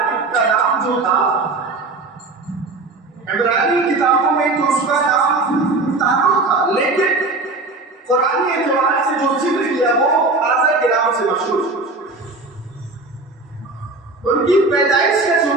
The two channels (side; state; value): left; quieter; 3.4 dB